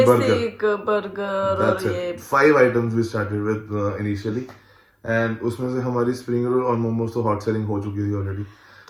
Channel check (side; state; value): both; identical; correlation 1.00